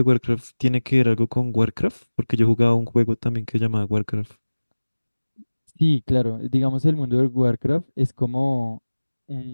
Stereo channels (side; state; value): both; inverted; correlation -1.00